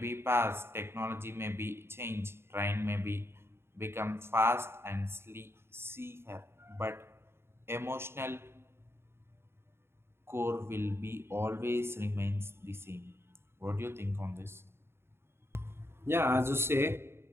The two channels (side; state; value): left; late; 0.12 ms